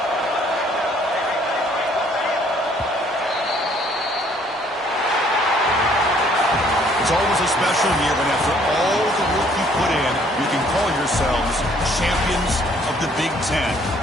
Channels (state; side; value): normal; both; correlation 0.62